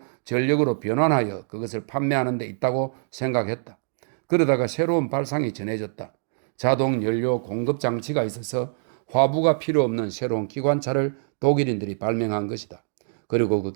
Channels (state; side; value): silent; left; digital silence